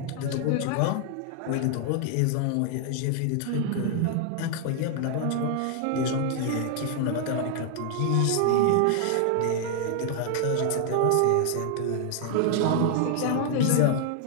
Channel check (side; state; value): both; different; correlation 0.00